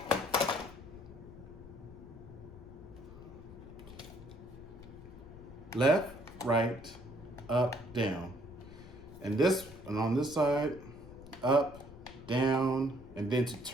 left, right, up, down. And on this side, up, down, and then to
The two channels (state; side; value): noise; left; rumble, 17 dB below the sound